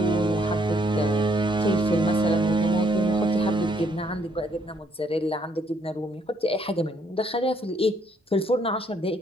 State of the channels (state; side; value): normal; both; correlation 0.69